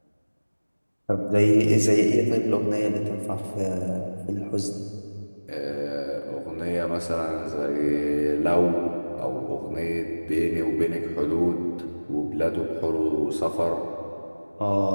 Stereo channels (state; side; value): inverted; both; correlation -1.00